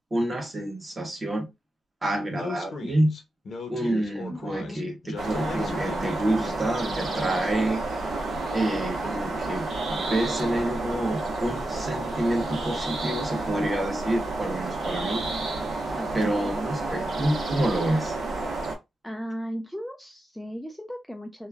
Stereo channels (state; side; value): normal; both; correlation 0.89